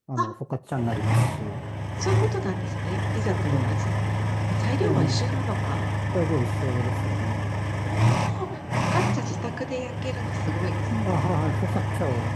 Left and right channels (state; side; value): identical; both; correlation 1.00